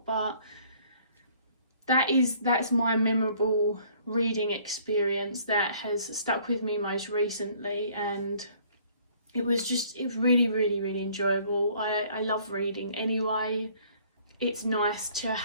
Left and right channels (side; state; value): both; inverted; correlation -0.58